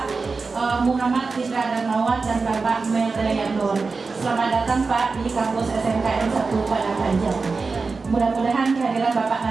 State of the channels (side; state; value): left; quieter; 4.3 dB